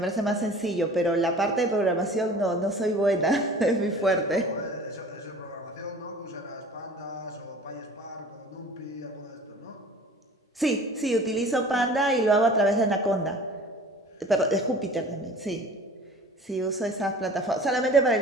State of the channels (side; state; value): both; normal; correlation 0.44